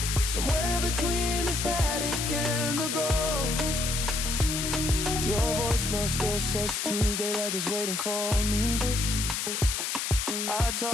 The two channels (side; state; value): left; noise; hiss, 1 dB below the sound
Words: somewhere between the static and the gold. Your voicemail still says Tuesday like it's waiting for me. I